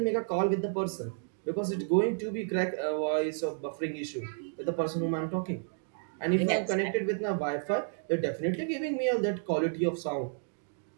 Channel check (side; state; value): left; silent; digital silence